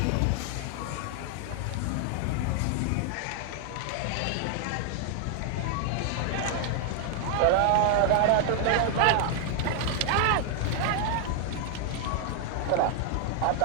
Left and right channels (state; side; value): different; both; correlation 0.00